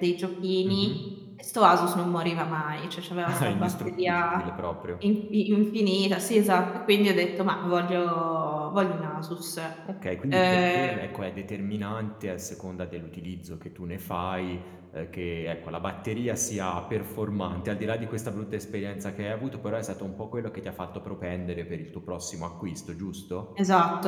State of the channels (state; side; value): identical; both; correlation 1.00